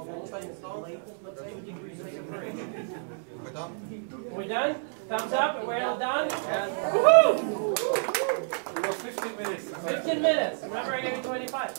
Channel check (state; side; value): silent; left; 59 dB below the other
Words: We're done? We're done? Thumbs up, we're all done? Woohoo! We got 15 minutes. 15 minutes. Remember, I gave you